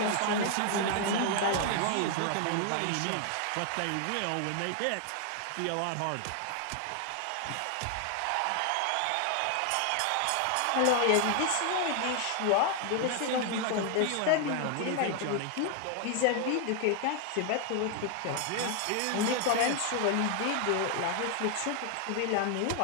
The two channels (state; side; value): different; both; correlation 0.00